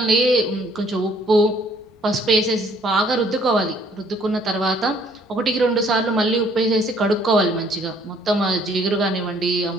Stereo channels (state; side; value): normal; both; correlation 0.62